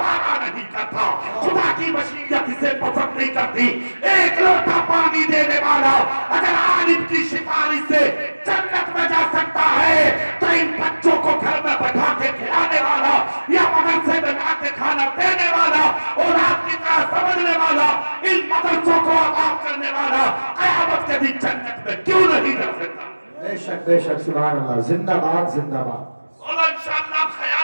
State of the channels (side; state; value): both; inverted; correlation -1.00